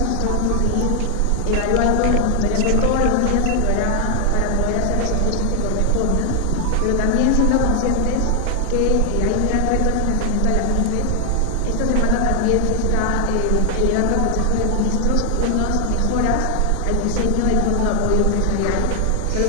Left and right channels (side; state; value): both; different; correlation 0.00